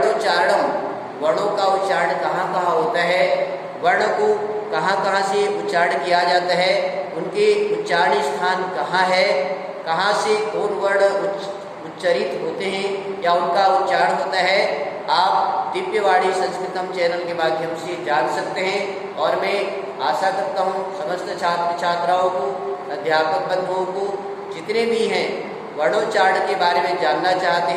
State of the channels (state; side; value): identical; both; correlation 1.00